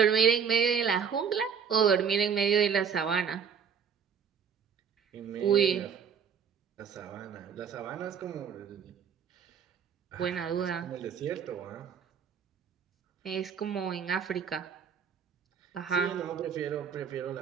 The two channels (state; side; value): quieter; left; 7.0 dB